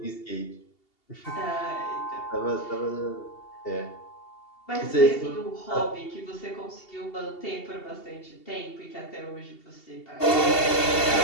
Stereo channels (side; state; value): right; late; 2.7 ms